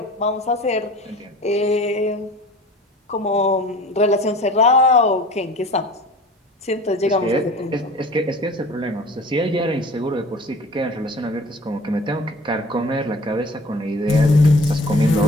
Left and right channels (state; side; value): normal; both; correlation 0.44